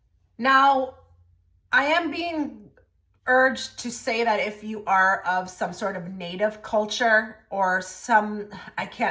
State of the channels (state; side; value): identical; both; correlation 1.00